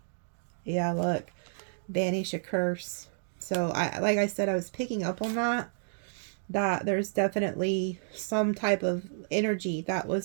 Yeah, look, banish a curse. So like I said, I was picking up on that there's definitely some type of energy that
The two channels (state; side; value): silent; left; digital silence